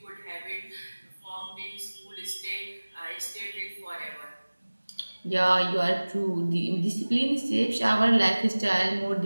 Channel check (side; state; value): both; inverted; correlation -1.00